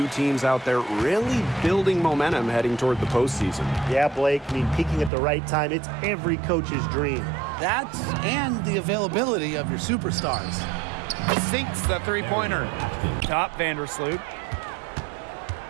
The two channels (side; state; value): left; drops out; at 5.1 s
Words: teams out there really building momentum heading toward the postseason. Yeah, Blake, peaking at the right time, it's every coach's dream. That's and the availability of your superstars. Sinks the three-pointer. Top Vandersloot.